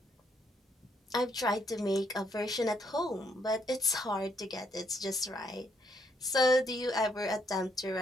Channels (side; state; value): both; normal; correlation 0.72